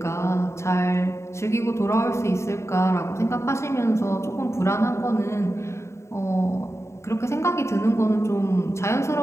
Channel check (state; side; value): late; right; 0.14 ms